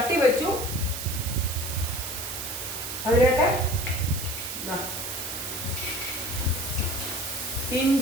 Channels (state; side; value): noise; right; hiss, 6 dB below the sound